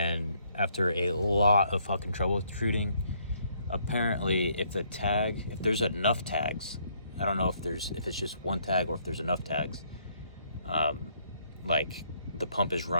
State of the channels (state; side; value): inverted; both; correlation -0.69